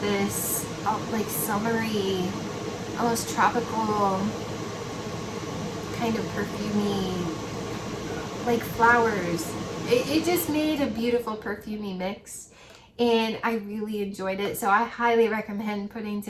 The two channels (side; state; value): both; identical; correlation 1.00